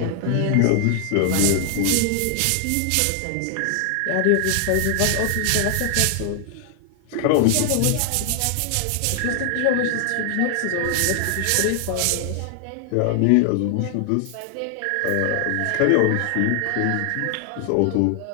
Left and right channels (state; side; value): different; both; correlation 0.00